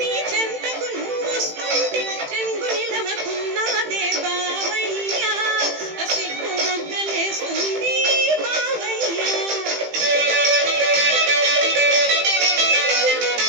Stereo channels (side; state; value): left; late; 18 ms